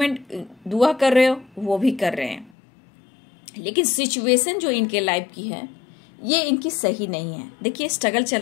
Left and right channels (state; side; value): drops out; right; at 2.5 s